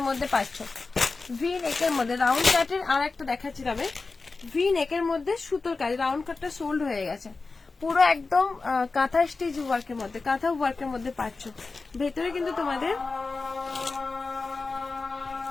মধ্যে পাচ্ছ। ভি নেকের মধ্যে রাউন্ড কাটের, আর একটা দেখাচ্ছি তবে, ভি নেকের মধ্যে সুতোর কাজ, রাউন্ড কাটটা সোল্ড হয়ে গেছে পুরো একদম কাঁথা স্টিচ ওয়ার্কের মধ্যে, কাঁথা ওয়ার্কের মধ্যে পাচ্ছ। ভেতরে কিন্তু তোমাদের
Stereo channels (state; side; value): quieter; right; 4.0 dB